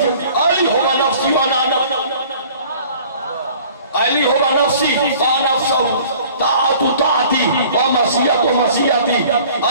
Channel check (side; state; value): both; inverted; correlation -0.51